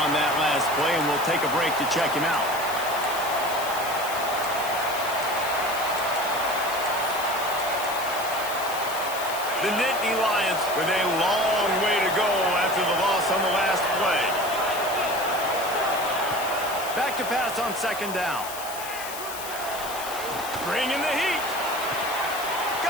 on that last play, and we'll take a break to check him out. The Nittany Lions with a long way to go after the loss on the last play. Back to pass on second down. Bringing the heat.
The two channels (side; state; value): left; noise; hiss, 10 dB below the sound